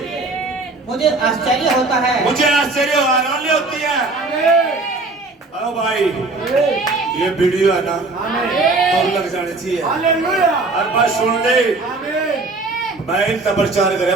मुझे आश्चर्य होता है, मुझे आश्चर्य हैरानी होती है। अरे भाई ये वीडियो है ना, तो लग जाने चाहिए। हर बात सुन ले, मैं इनका प्रचार करे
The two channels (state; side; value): quieter; left; 3.4 dB